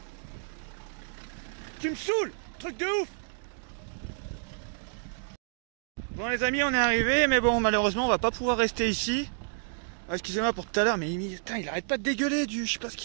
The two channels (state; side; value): silent; left; digital silence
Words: Tu me saoules! Truc de ouf! Bon les amis, on est arrivé, mais bon, malheureusement, on va pas pouvoir rester ici. Ah, excusez-moi pour tout à l'heure, mais putain, il arrête pas de dégueuler je sais pas ce